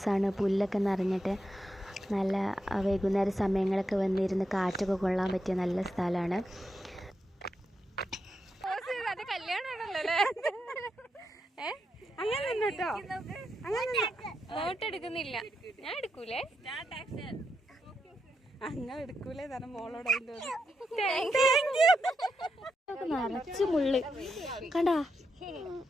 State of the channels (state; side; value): normal; both; correlation 0.84